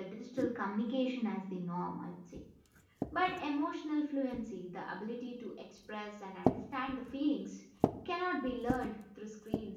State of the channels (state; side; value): identical; both; correlation 1.00